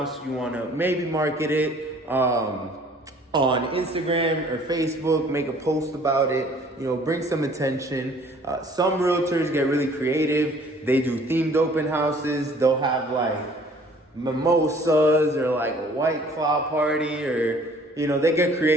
you want to maybe market it on Instagram or Facebook, make a post about it, bring some attention. Some realtors get really creative. They do themed open houses. They'll have like mimosas or like a White Claw party, or they get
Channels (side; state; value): both; normal; correlation 0.55